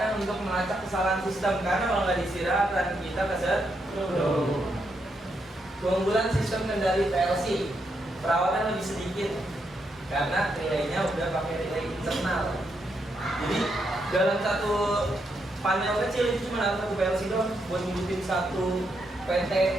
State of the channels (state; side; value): normal; both; correlation 0.80